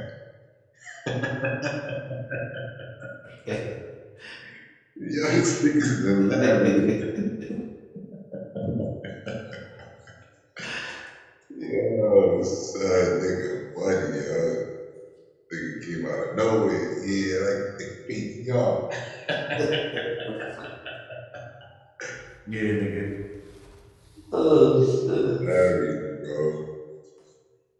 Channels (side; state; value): both; identical; correlation 1.00